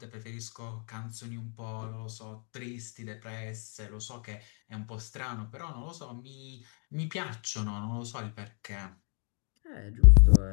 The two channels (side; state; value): right; quieter; 39.8 dB